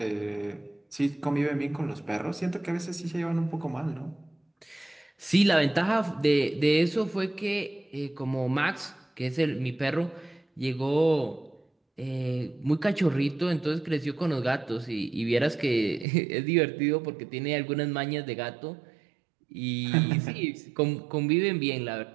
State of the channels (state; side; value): drops out; left; at 16.1 s